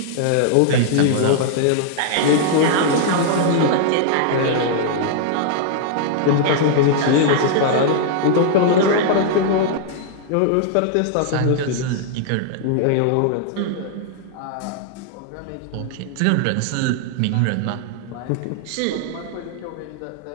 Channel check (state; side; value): different; both; correlation -0.01